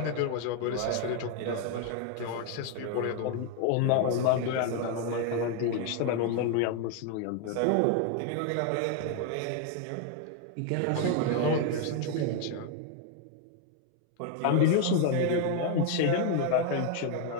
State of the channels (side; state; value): both; different; correlation 0.01